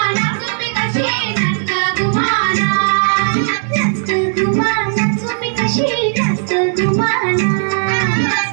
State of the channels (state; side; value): silent; left; digital silence